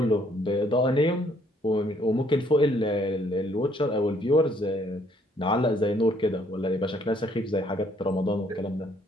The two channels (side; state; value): both; normal; correlation 0.66